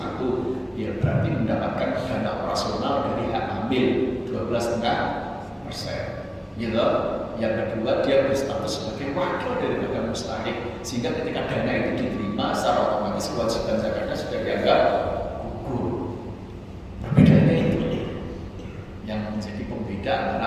ya berarti mendapatkan dana operasional dari hak amil 12,5%. Gitu. Yang kedua dia berstatus sebagai wakil daripada mustahik, sehingga ketika dana itu diterima secara otomatis kewajiban zakatnya sudah dianggap gugur. Perbedaannya itu yang menjadi pembeda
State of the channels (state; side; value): identical; both; correlation 1.00